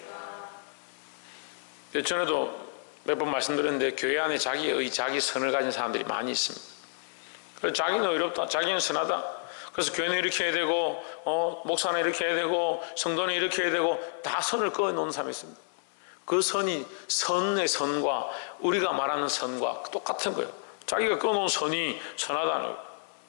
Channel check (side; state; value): right; silent; 58 dB below the other